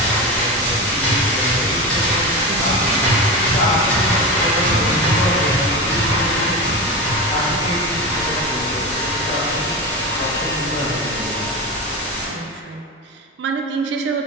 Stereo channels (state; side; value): normal; both; correlation 0.22